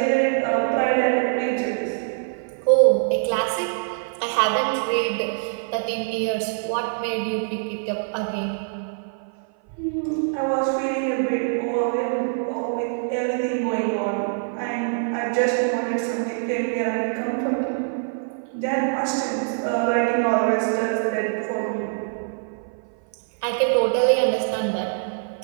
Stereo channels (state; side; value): silent; left; 56 dB below the other